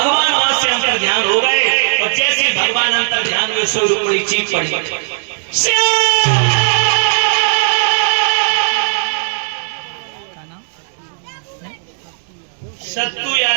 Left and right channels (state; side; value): silent; left; digital silence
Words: वहां से अंतर ध्यान हो गए और जैसे ही भगवान अंतर ध्यान हुए सो रुक्मिणी चीख पड़ी, सत्तू